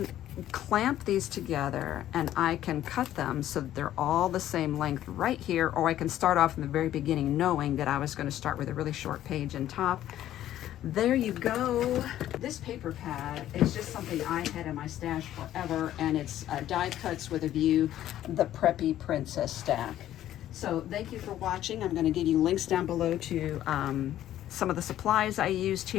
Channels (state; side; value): quieter; right; 12.5 dB